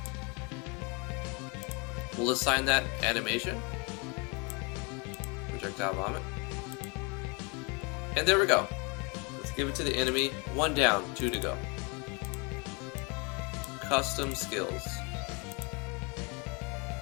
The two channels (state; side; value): quieter; right; 31.2 dB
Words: We'll assign that animation. Projectile vomit. And there we go. Let's give it to the enemy. 1 down, 2 to go. Custom skills.